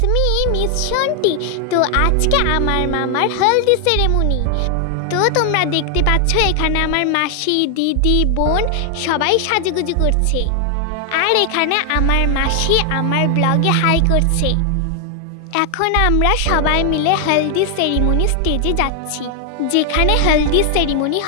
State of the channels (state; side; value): different; both; correlation 0.00